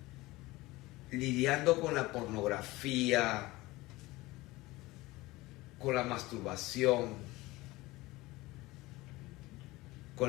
lidiando con la pornografía, con la masturbación,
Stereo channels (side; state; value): right; quieter; 20.1 dB